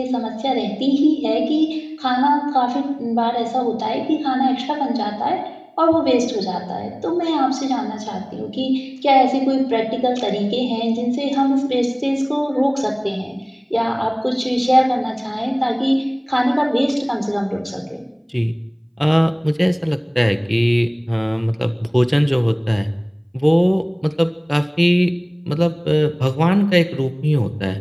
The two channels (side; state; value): both; identical; correlation 1.00